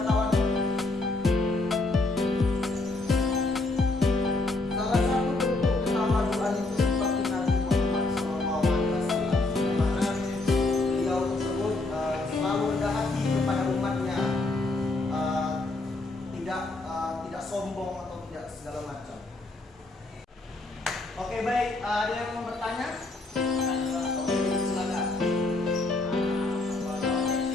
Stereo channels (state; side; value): quieter; right; 3.1 dB